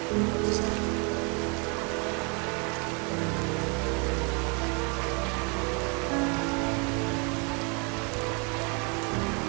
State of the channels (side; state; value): left; quieter; 33.4 dB